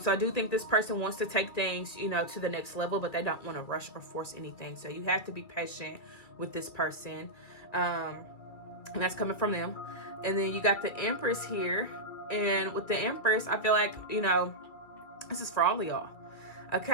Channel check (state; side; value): late; right; 2.3 ms